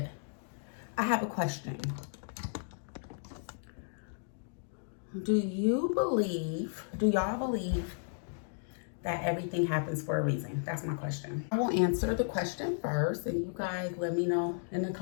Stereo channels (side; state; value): right; silent; digital silence